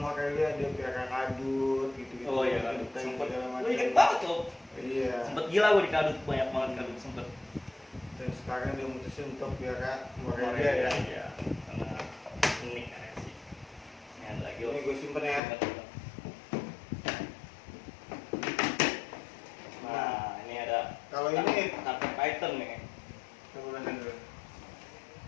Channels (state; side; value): drops out; right; at 15.4 s